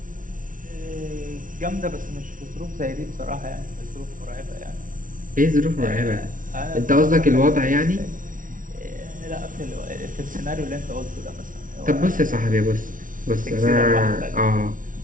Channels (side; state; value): left; late; 0.38 ms